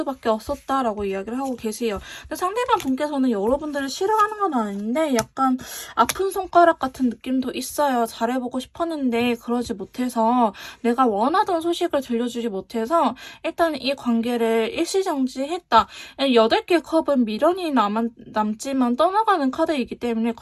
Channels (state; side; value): identical; both; correlation 1.00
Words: 없었다라고 이야기를 하고 계세요. 근데 상대방 분께서는 여러분들을 싫어하는 건 아닌데 약간 아픈 손가락 같은 느낌도 있어요. 잘해보고 싶었는데 그러지 못해서, 내가 원하던 소식을 들려주지 못해서 일단 이 관계를 일시정지했다. 8개 컵은 미련이 남지만 떠나가는 카드이기 때문에